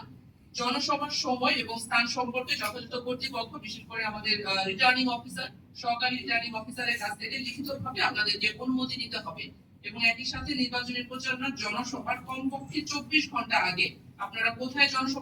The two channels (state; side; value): identical; both; correlation 1.00